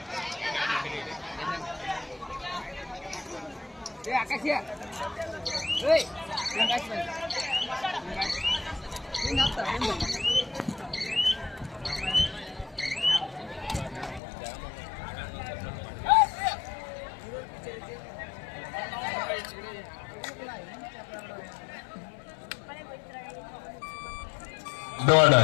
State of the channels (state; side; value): drops out; right; at 14.2 s